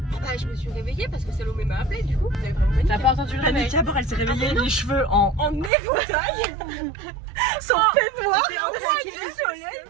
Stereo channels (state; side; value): drops out; left; at 5.7 s